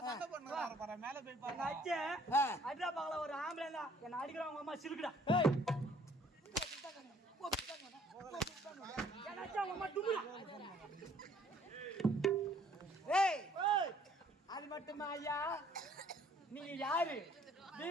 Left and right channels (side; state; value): both; normal; correlation 0.59